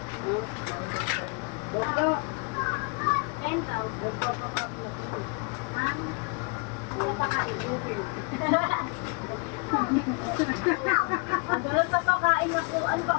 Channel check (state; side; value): quieter; right; 32.3 dB